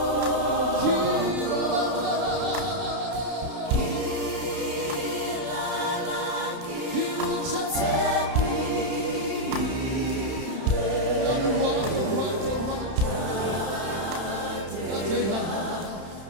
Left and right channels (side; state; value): left; late; 31 ms